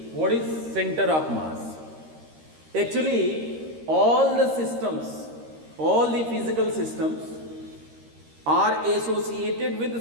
what is center of mass. Actually, all the systems, all the physical systems are associated with a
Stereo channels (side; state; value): left; late; 13 ms